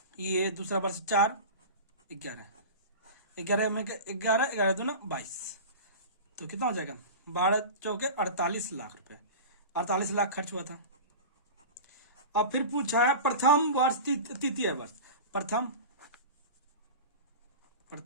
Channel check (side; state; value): both; inverted; correlation -0.31